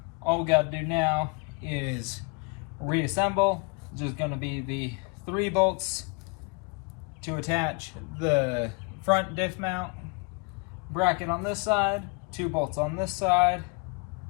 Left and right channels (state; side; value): quieter; right; 30.2 dB